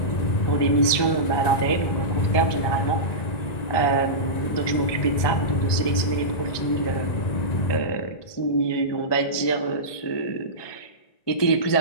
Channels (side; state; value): right; late; 1.2 ms